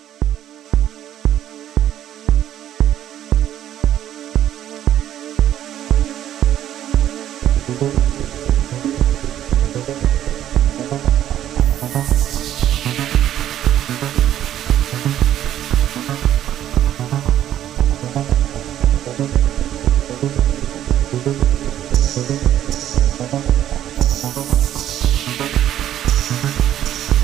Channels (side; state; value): left; quieter; 11.4 dB